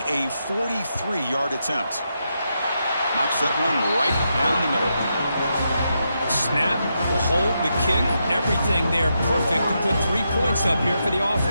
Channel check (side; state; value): both; inverted; correlation -0.83